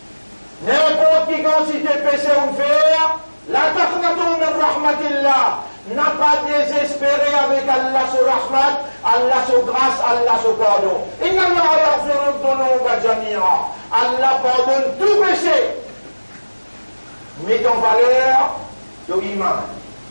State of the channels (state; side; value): inverted; both; correlation -1.00